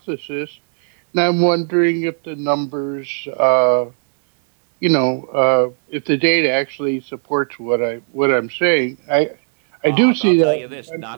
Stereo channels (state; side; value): silent; left; digital silence